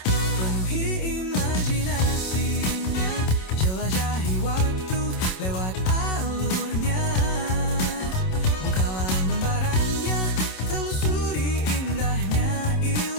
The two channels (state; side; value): late; right; 27 ms